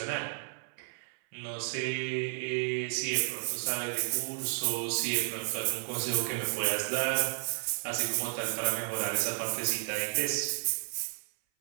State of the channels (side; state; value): left; silent; 56 dB below the other